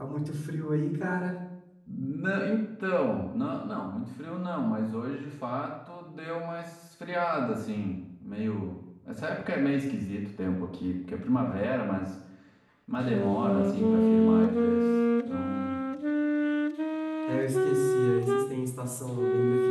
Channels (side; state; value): both; identical; correlation 1.00